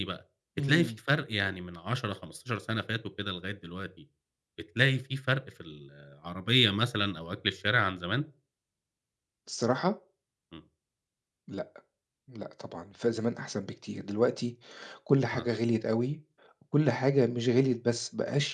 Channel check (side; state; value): both; identical; correlation 1.00